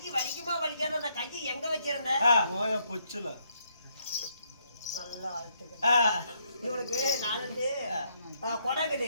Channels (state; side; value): inverted; both; correlation -0.73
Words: வலிக்குமா வலிக்காத அந்த கையை எங்க வச்சிருந்த பொச்சுல நல்லா இவனுக்கு நாலு குடம்